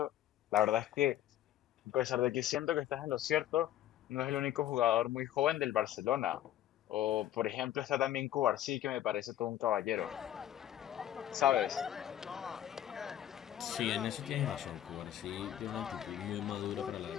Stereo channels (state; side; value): quieter; right; 12.2 dB